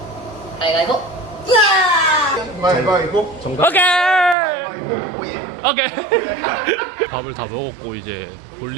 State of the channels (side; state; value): left; drops out; at 4.4 s